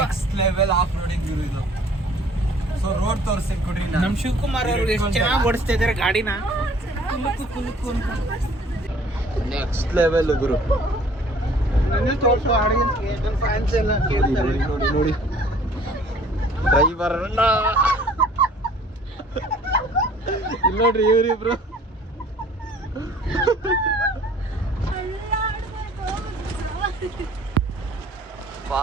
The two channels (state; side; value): normal; both; correlation 0.54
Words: ನೆಕ್ಸ್ಟ್ ಲೆವೆಲ್ ಆಫ್ ರೋಡಿಂಗ್ ಇದು. ಸೊ ರೋಡ್ ತೋರಿಸಿ ಕೊಡ್ರಿ. ನಮ್ ಶಿವಕುಮಾರ್ ಅವರು ಎಷ್ಟು ಚೆನ್ನಾಗಿ ಓಡಿಸ್ತಾ ಇದಾರೆ ಗಾಡಿನ. ಕುಲುಕು ಅಂತ ನೆಕ್ಸ್ಟ್ ಲೆವೆಲ್ ಗುರು. ನನಗೆ ತೋರಿಸು ಆಡಿಯನ್ಸ್ಗೆ, ನನ್ನ ಫ್ಯಾನ್ಸ್ ಎಲ್ಲ ಕೇಳ್ತಾರೆ. ನೋಡಿ ನೋಡಿ ಡ್ರೈವರ್ ಅಣ್ಣ ಇಲ್ಲಿ ನೋಡ್ರಿ ಇವ್ರಿಬ್ರು.